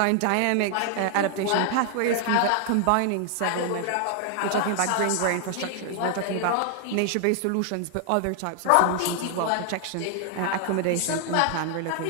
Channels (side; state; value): both; different; correlation 0.00